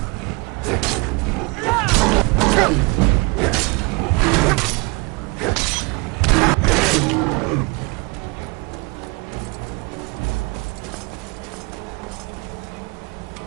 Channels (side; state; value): left; quieter; 28.8 dB